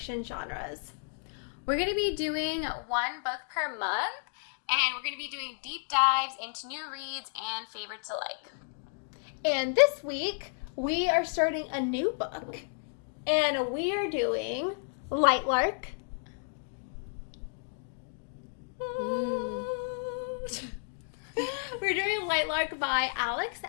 genres. We're going to be doing one book per month, and we're going to be doing deep dives into new reads and favorites alike. And this week, we are starting a new book, and we are doing Lightlark. We're doing Lightlark by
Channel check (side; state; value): right; silent; 57 dB below the other